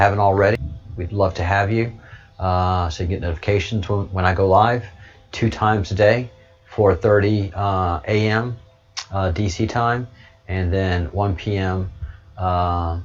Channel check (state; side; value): identical; both; correlation 1.00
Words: already. We'd love to have you, so you get notifications when I go live 2 times a day, 4:30 a.m. DC time, and then 1 p.m.